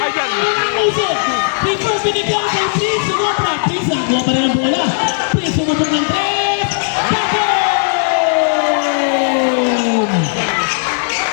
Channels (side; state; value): right; silent; digital silence